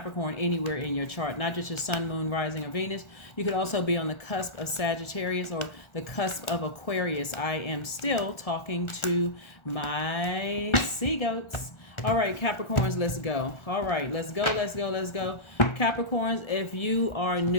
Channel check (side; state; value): right; late; 1.4 ms